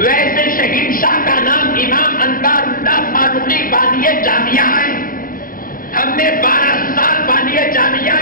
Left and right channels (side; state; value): right; late; 0.41 ms